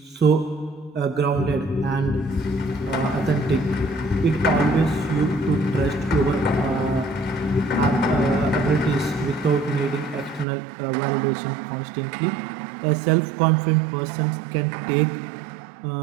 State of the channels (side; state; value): left; drops out; at 10.5 s